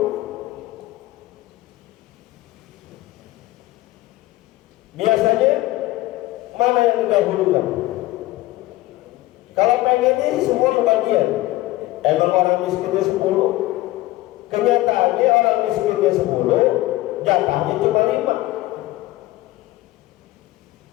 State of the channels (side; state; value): right; quieter; 17.7 dB